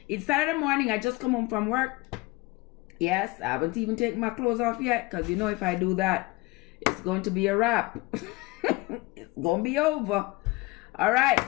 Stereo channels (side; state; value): right; quieter; 22.7 dB